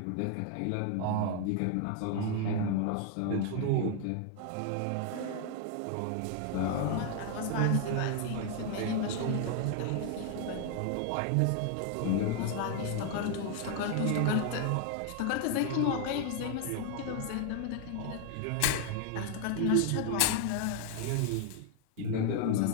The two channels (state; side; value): different; both; correlation 0.00